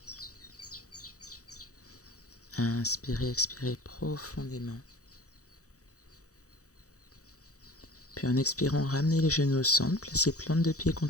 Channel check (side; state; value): right; late; 0.66 ms